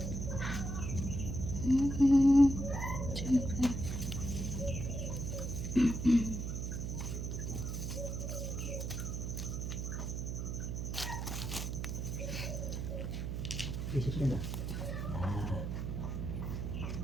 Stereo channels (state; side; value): noise; right; hum, 3 dB below the sound